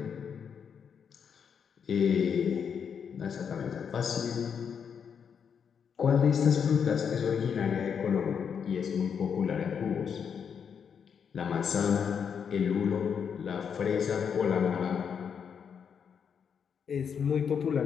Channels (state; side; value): quieter; right; 7.1 dB